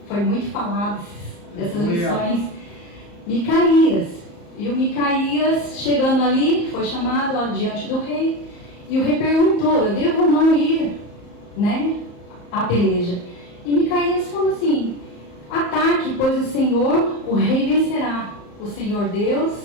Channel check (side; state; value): right; late; 34 ms